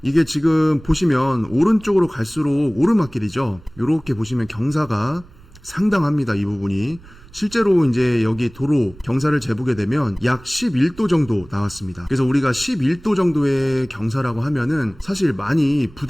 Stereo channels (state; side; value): noise; right; rumble, 23 dB below the sound